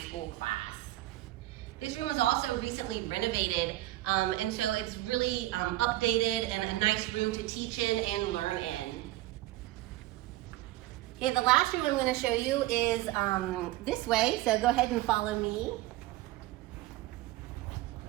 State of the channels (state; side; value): quieter; left; 16.9 dB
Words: school class. This room was also recently renovated, and so it's really updated and a nice room to teach in and learn in. Okay, the last room I'm going to show you is this way, so go ahead and follow me.